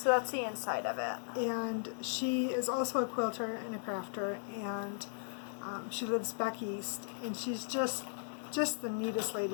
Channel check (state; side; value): silent; right; 53 dB below the other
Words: that's the inside of it. And she is also a quilter and a crafter, and she lives back east. And she's just the neatest lady